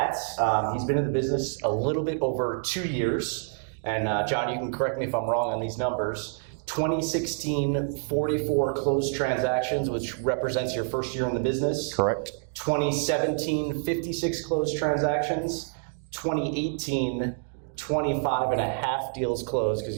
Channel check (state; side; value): silent; left; 60 dB below the other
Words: He's been in the business a little bit over 2 years. And John, you can correct me if I'm wrong on these numbers. 2016, 44 closed transactions, which represents your first year in the business. Correct. 2017, 56 closed transactions. 2018, 25 and a half deals closed, because